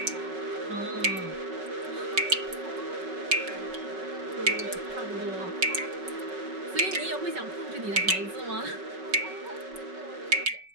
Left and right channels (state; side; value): late; left; 5.3 ms